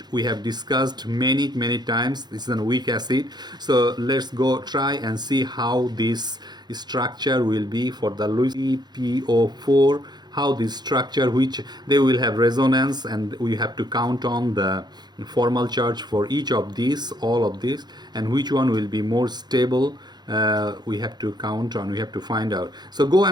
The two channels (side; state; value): left; late; 0.20 ms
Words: we have discussed many times. This is a weak acid. So let's go try and see how this structure will be for the LuCPO4, how this structure, which they will have resonance, and we have to count on the formal charge for each of these, all of these, and which one will be more stable. We have to count on, we have to find out. So go